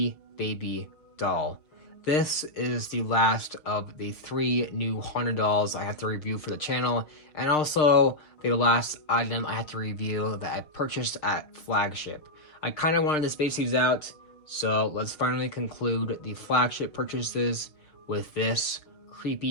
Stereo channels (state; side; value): late; right; 6.6 ms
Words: Baby Doll. This is the last of the 3 new haunted dolls I have to review for the channel, and also the last item I have to review that I purchased at Flagship. I kind of wanted to space these out, so let's finally conclude the Flagship purchases with this